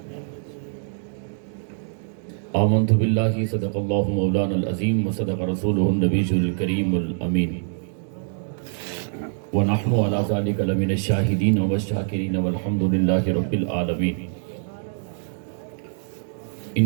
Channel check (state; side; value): silent; left; digital silence